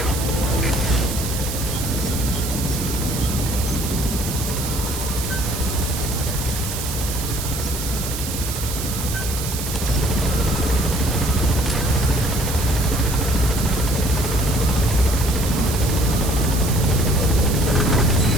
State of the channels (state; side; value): noise; right; hiss, 6 dB below the sound